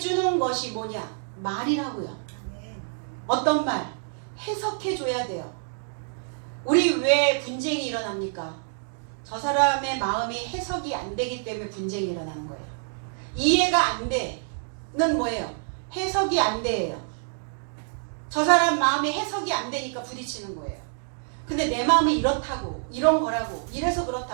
것이 뭐냐? 말이라고요. 어떤 말? 해석해줘야 돼요. 우리 왜 분쟁이 일어납니까? 저 사람의 마음이 해석이 안 되기 때문에 분쟁이 일어나는 거예요. 이해가 안 돼는 뭐예요? 해석이 안 돼요. 저 사람 마음이 해석이 안 되니까 부딪히는 거예요. 근데 내 마음이 이렇다고, 이런 거라고, 이래서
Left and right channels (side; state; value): left; silent; digital silence